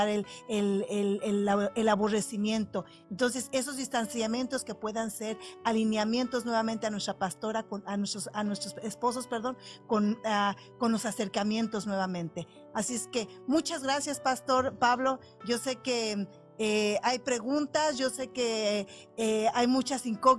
el aborrecimiento. Entonces, esos distanciamientos que puedan ser alineamientos nuevamente a nuestra pastora, a nuestros esposos, perdón, con los acercamientos nuevamente. Así es que muchas gracias, Pastor Pablo. Yo sé que hay preguntas, yo sé que hay muchas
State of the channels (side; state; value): both; identical; correlation 1.00